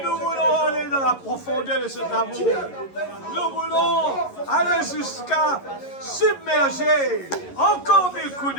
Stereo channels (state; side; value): late; right; 11 ms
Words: nous voulons aller dans la profondeur de cet amour. Nous voulons aller jusqu'à submerger encore des